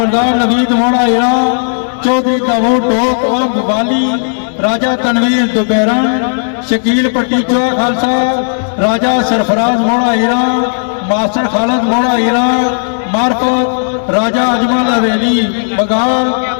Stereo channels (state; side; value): silent; right; digital silence